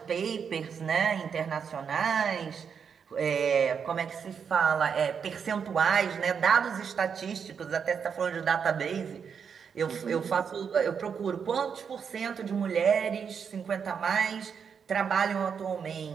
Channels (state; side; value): quieter; left; 6.7 dB